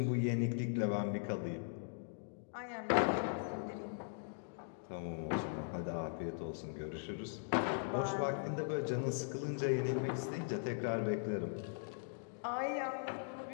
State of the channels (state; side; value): silent; right; digital silence